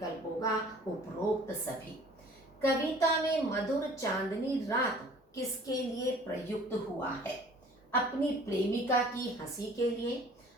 होगा उपरोक्त सभी। कविता में मधुर चांदनी रात किसके लिए प्रयुक्त हुआ है? अपनी प्रेमिका की हंसी के लिए,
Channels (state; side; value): normal; both; correlation 0.50